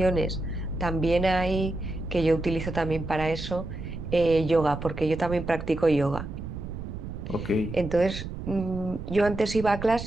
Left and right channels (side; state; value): right; noise; rumble, 8 dB below the sound